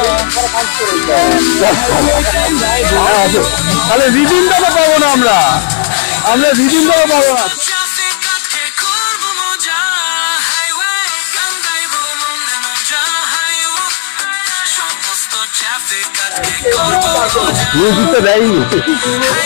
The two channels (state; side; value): silent; right; digital silence